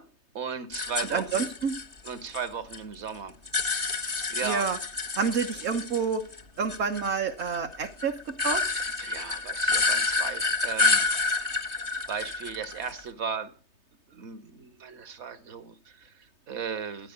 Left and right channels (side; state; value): left; late; 3.2 ms